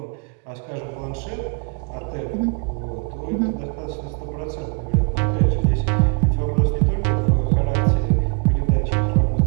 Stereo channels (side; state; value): left; quieter; 37.5 dB